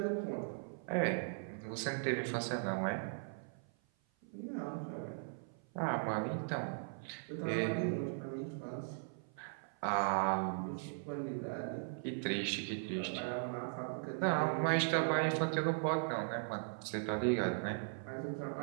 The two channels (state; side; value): silent; left; 52 dB below the other